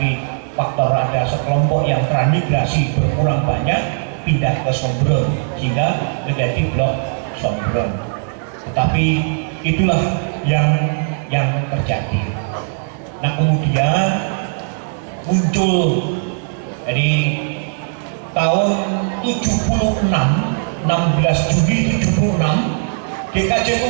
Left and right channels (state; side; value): silent; left; 60 dB below the other